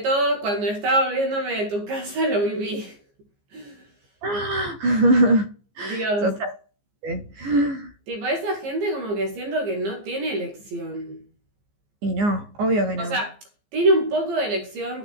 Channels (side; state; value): left; late; 15 ms